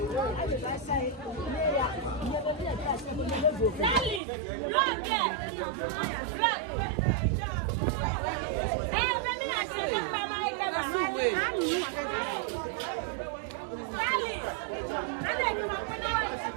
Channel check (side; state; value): left; drops out; at 4.2 s